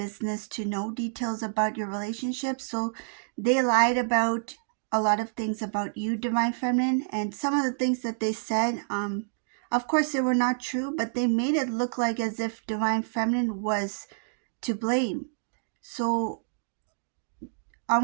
to know details about your relationship, so they lied about a lot of things about you, Divine Feminine. And some of the things that they said, of course they were not true, but they made it look like as if Divine Feminine was to blame. So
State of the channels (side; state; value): left; silent; digital silence